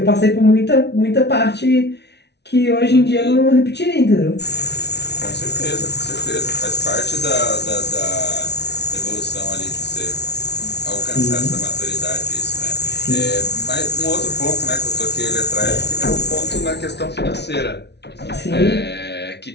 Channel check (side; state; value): right; late; 0.50 ms